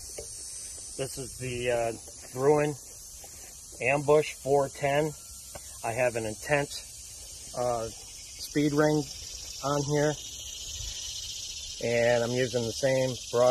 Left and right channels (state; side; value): identical; both; correlation 1.00